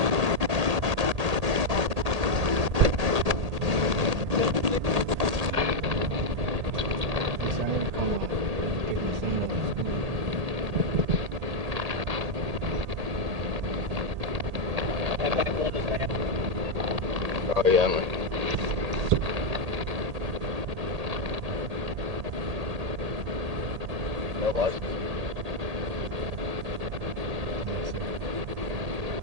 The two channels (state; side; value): late; left; 1.8 ms